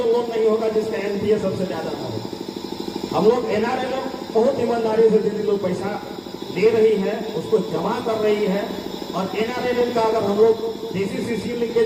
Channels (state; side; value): identical; both; correlation 1.00